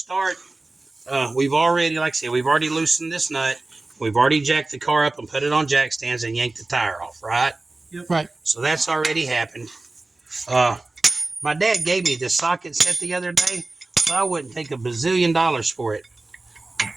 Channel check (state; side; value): quieter; left; 3.2 dB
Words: We've already, like I said, we've already loosened this nut. We've already jacked the car up and put it on jack stands and yanked the tire off, right? Yep. Right. So that's already happened. My dad gave me this socket set the other day, so I wouldn't take $1 bazillion for it.